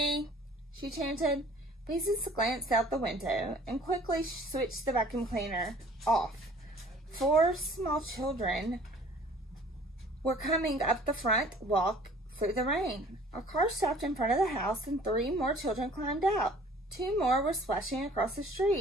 she chanted. Beezus glanced out the window and quickly switched the vacuum cleaner off. 4 small children were coming up the front walk through the rain. A car stopped in front of the house and 3 more children climbed out. 2 more were splashing across the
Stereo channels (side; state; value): both; normal; correlation 0.51